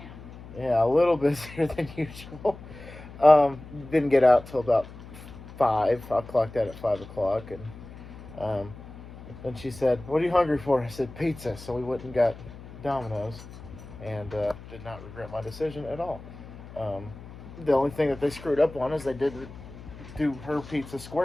Yeah, a little busier than usual. Didn't get out till about 5. I clocked out at 5 o'clock, and then she said, "What are you hungry for?" I said, "Pizza." So we went and got Domino's, and did not regret my decision at all. Um, the only thing that they screwed up on is they didn't do her pizza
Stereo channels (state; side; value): noise; left; hum, 16 dB below the sound